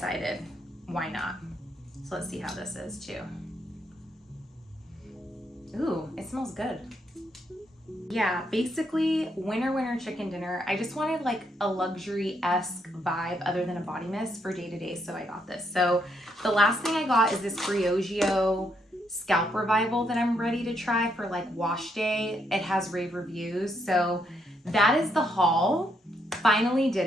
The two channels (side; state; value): both; normal; correlation 0.76